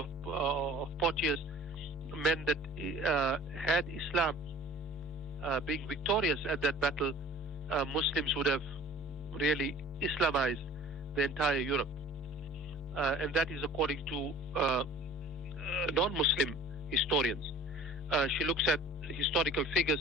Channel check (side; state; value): right; noise; rumble, 29 dB below the sound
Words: of Poitiers meant that had Islam being victorious at that battle, Muslims would have really Islamized the entire Europe. And that is according to non-Muslim historians. She looks at historical figures